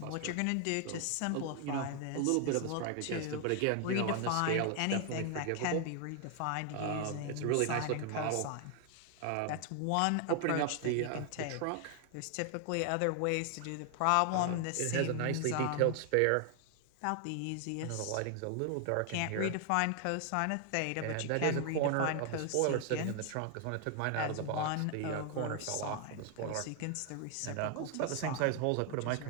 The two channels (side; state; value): both; different; correlation 0.00